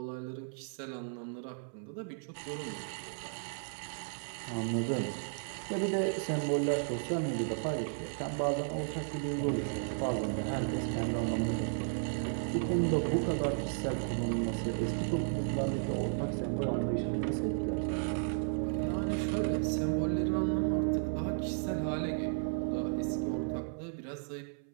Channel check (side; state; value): left; silent; 55 dB below the other